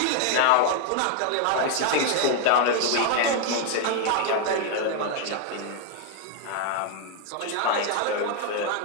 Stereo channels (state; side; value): different; both; correlation 0.00